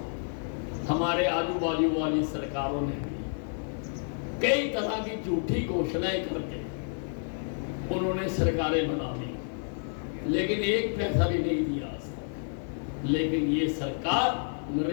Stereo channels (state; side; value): silent; right; digital silence